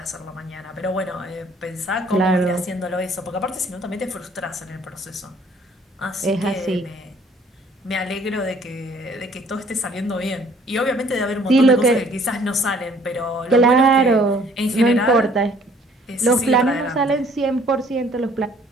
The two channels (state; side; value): normal; both; correlation 0.59